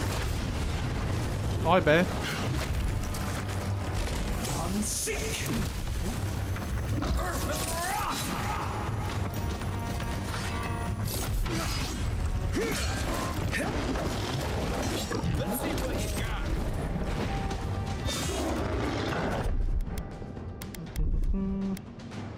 Hi, bear. I'm sick. Let's see what you got.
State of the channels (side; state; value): both; identical; correlation 1.00